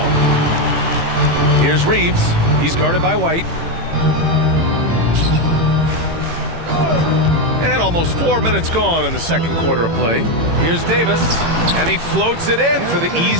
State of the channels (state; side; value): late; left; 18 ms